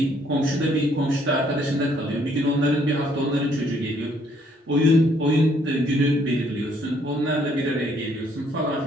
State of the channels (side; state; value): both; normal; correlation 0.66